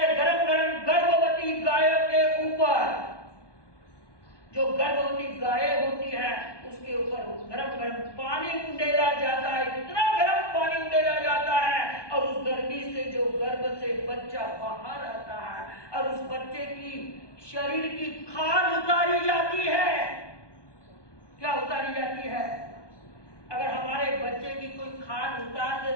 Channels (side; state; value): right; late; 1.2 ms